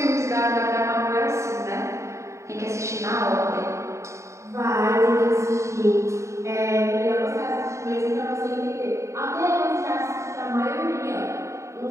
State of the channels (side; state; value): left; late; 0.14 ms